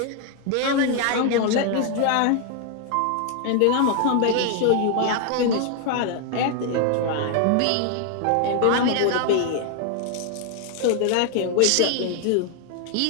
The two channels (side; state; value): both; different; correlation 0.00